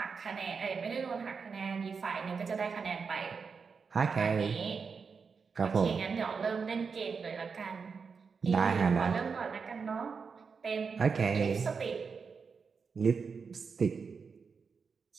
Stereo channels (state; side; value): quieter; left; 5.4 dB